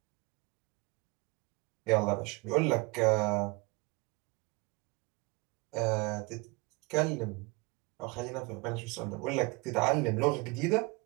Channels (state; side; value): quieter; left; 26.8 dB